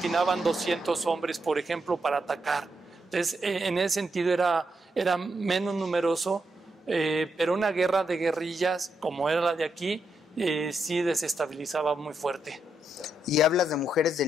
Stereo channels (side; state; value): both; normal; correlation 0.81